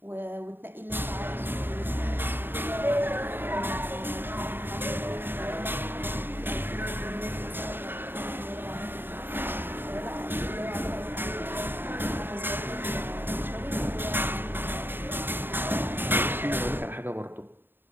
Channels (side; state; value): left; late; 0.097 ms